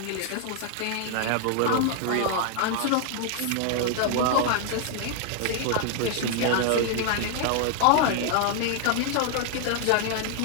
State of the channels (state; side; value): different; both; correlation 0.00